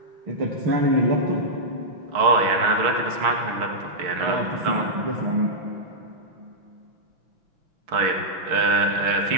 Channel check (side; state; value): left; late; 6.0 ms